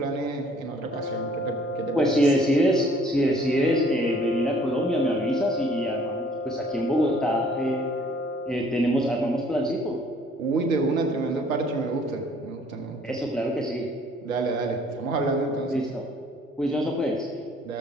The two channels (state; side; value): normal; both; correlation 0.58